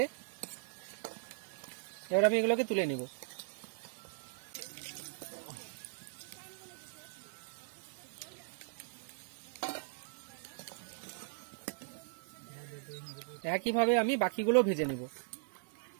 এবার আমি এগুলোকে তুলে নেব। একইভাবে আমি বাকিগুলো ভেজে নেব।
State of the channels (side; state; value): left; silent; digital silence